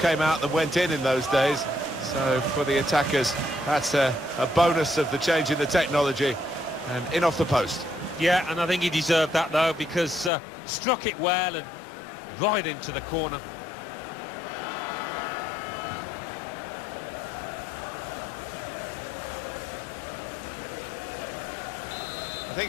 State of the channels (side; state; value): right; drops out; at 10.3 s